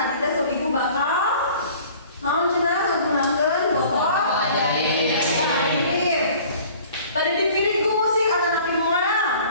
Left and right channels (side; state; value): both; inverted; correlation -0.49